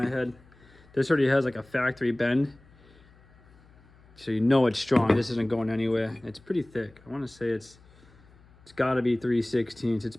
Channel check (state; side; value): noise; left; hum, 27 dB below the sound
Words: head. This already has like a factory bend, so you know it's strong. This isn't going anywhere. It's pretty thick. I want to say it's got to be 3/16. It's